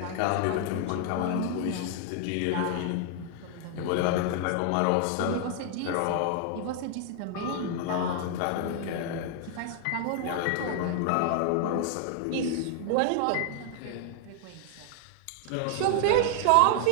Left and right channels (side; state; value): both; different; correlation 0.00